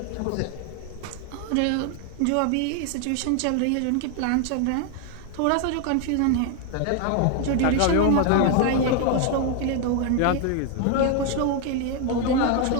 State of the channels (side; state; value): both; different; correlation 0.01